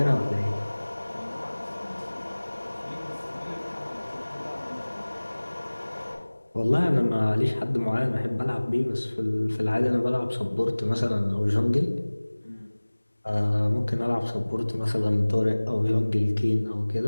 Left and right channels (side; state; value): both; inverted; correlation -1.00